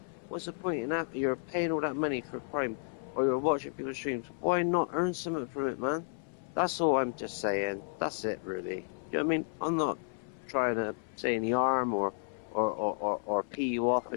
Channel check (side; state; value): right; silent; 56 dB below the other